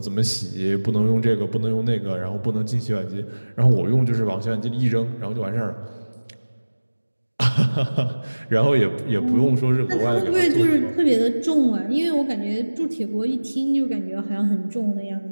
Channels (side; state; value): both; inverted; correlation -1.00